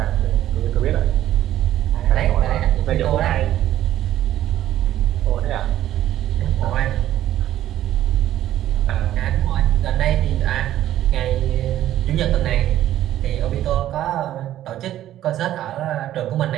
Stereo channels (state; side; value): quieter; left; 12.7 dB